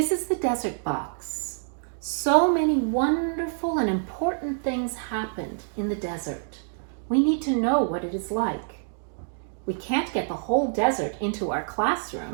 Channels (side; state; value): left; silent; digital silence